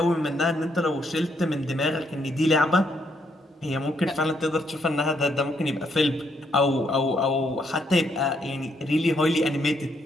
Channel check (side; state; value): both; normal; correlation 0.74